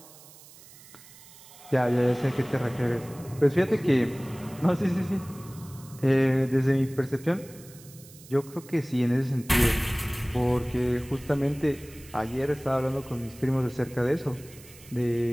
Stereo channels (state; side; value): noise; right; hiss, 21 dB below the sound